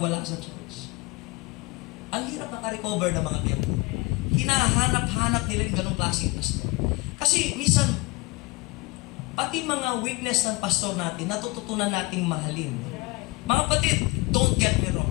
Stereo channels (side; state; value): right; quieter; 24.0 dB